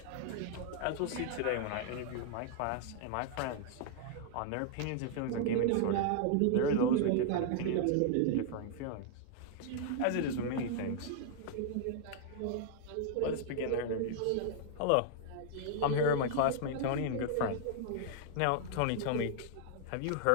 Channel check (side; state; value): both; different; correlation 0.00